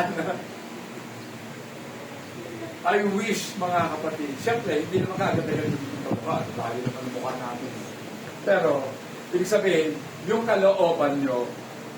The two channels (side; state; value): both; identical; correlation 1.00